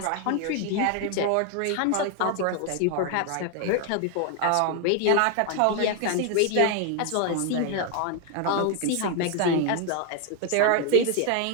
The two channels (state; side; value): different; both; correlation 0.01